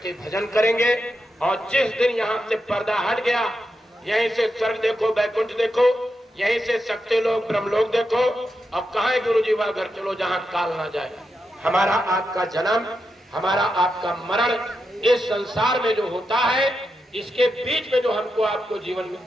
भजन करेंगे। और जिस दिन यहाँ से पर्दा हट गया, यहीं से स्वर्ग देखो, बैकुंठ देखो, यहीं से शक्ति लोग, ब्रह्मलोक देखो। अब कहाँ है गुरु जी? वह घर चलो जहाँ काल ना जाए। हमारा आपका जन्म, हमारा आपका मरण इस संसार में जो होता है, इसके बीच में जो हमको आपको जीवन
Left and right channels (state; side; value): normal; both; correlation 0.87